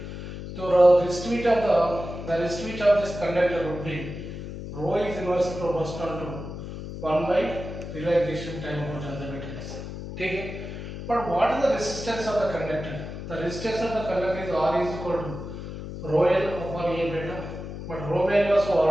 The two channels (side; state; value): left; noise; hum, 9 dB below the sound